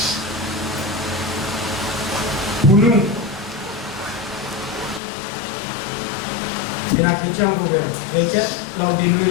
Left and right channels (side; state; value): right; drops out; at 5.0 s